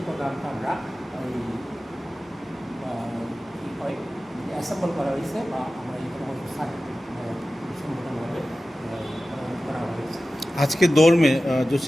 প্রোগ্রামটা আমরা কী হয় অ্যাসেম্বল করা হয়েছে বা আমরা এখানে সম্বোধনভাবে করা হয়েছে। आज के दौर में जो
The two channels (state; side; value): normal; both; correlation 0.95